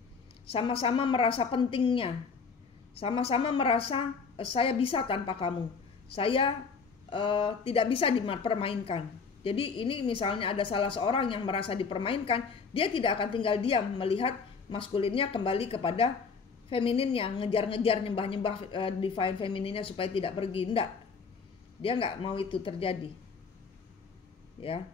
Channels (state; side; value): quieter; right; 5.3 dB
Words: sama-sama merasa pentingnya, sama-sama merasa saya bisa tanpa kamu, saya tidak bisa dipermainkan. Jadi ini misalnya ada salah seorang yang merasa dipermainkan, dia tidak akan tinggal diam melihat maskulinnya kembali kepada femininnya, ngejar-ngejar, nyembah-nyembah divine femininnya supaya tidak pergi. Enggak, dia nggak mau itu terjadi. Ya,